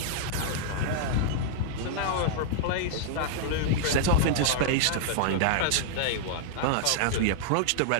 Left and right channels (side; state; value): both; different; correlation -0.02